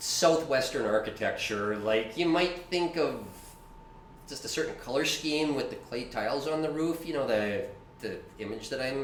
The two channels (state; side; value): identical; both; correlation 1.00